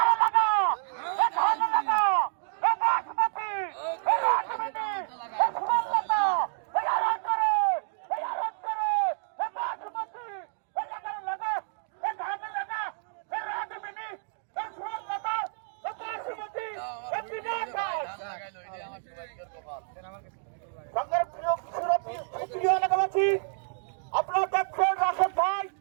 আপনারা দেখছেন রাশেদ ভাই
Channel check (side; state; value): left; silent; digital silence